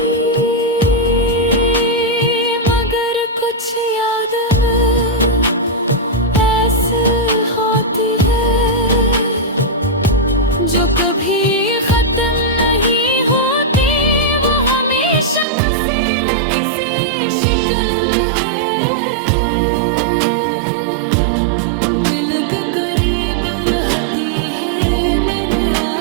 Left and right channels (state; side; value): drops out; left; at 15.5 s